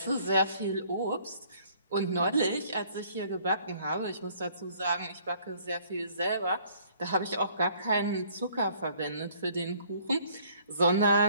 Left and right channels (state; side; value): inverted; both; correlation -0.59